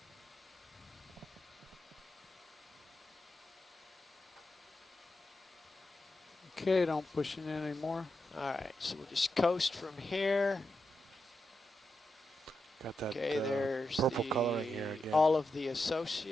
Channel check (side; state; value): both; normal; correlation 0.87